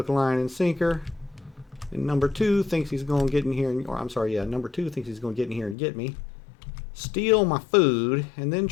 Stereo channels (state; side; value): drops out; right; at 5.8 s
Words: line, and sinker. And number two thinks he's going to get in here, or I'm sorry, yeah, number two thinks he's going to get in here and get me, steal my food, and then